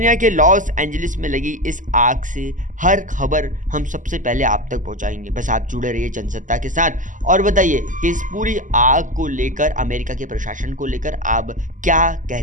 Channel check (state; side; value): late; left; 0.37 ms